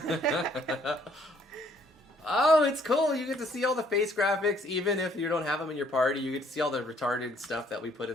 Oh, it's cool. You get to see all the face graphics, even if you don't have them in your party. You get to see all the retarded stuff that we put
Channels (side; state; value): both; normal; correlation 0.63